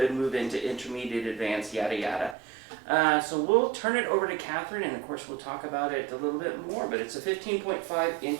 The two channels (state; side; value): drops out; left; at 2.4 s